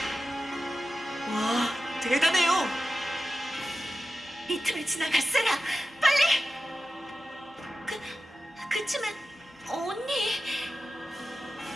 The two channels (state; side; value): normal; both; correlation 0.93